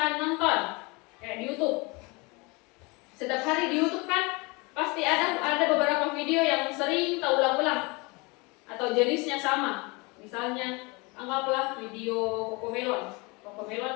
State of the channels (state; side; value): quieter; right; 27.2 dB